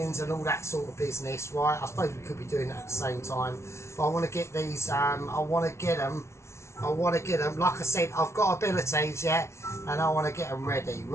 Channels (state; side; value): late; right; 0.13 ms